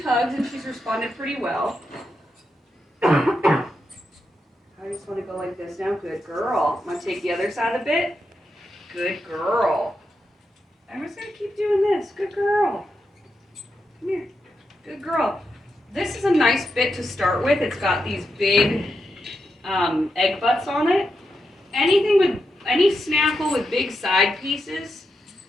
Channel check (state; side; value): normal; both; correlation 0.85